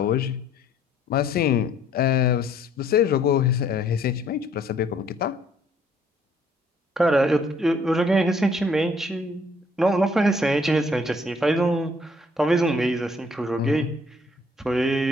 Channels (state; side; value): normal; both; correlation 0.62